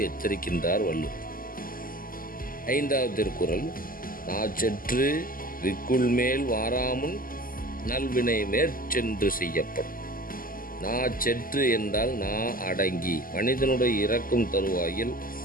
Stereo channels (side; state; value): right; late; 0.41 ms